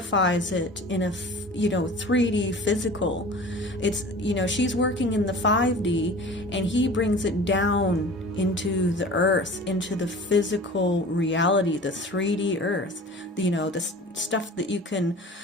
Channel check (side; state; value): both; normal; correlation 0.40